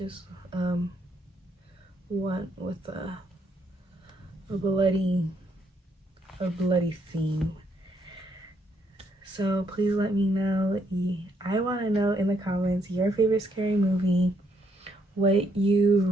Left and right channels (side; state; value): both; normal; correlation 0.73